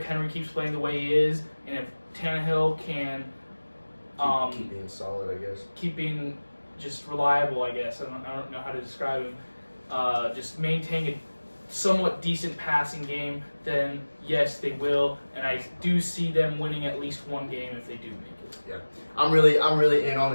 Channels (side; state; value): both; inverted; correlation -1.00